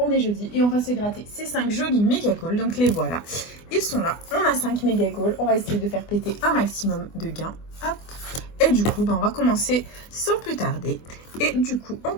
est jeudi et on va se gratter ces 5 jolis méga goals. Donc les voilà, ils sont là. On a 5 méga goals, on va essayer de faire péter un maximum de gains. Hop. Et du coup, on va commencer sans plus tarder. Et du coup, on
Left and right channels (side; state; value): right; late; 24 ms